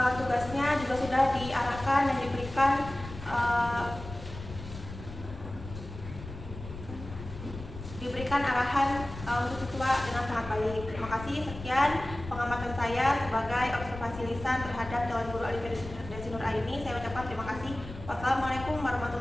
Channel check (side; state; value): left; noise; rumble, 12 dB below the sound